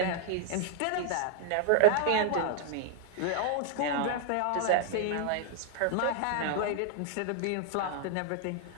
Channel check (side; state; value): both; different; correlation 0.00